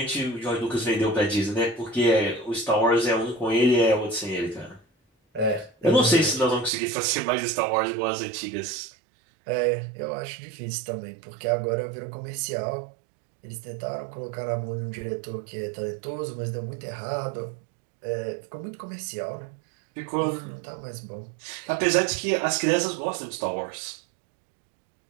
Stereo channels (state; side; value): drops out; left; at 6.7 s